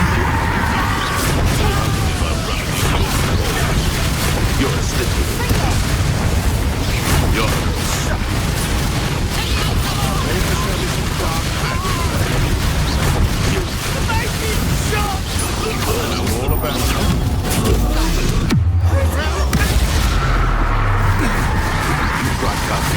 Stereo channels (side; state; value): both; identical; correlation 1.00